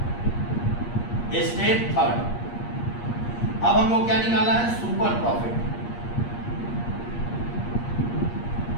स्टेप थर्ड। अब हम लोग क्या निकालना है? Super profit.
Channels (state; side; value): late; right; 8.5 ms